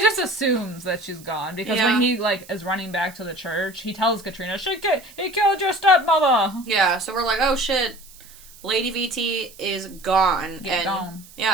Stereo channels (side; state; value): right; noise; hiss, 21 dB below the sound